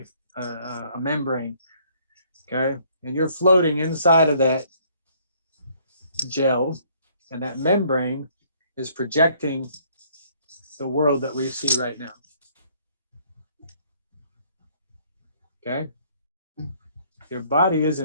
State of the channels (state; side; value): inverted; both; correlation -0.63